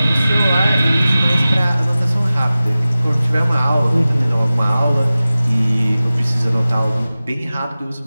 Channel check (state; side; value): inverted; both; correlation -0.96